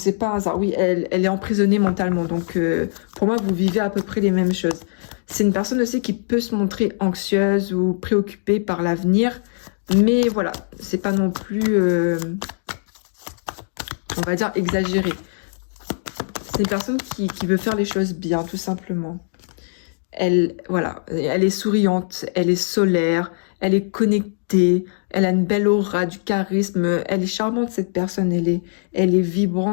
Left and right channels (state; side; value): silent; right; digital silence